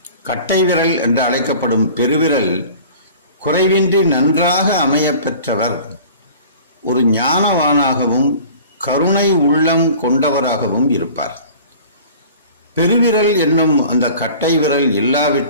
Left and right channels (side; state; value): both; inverted; correlation -0.44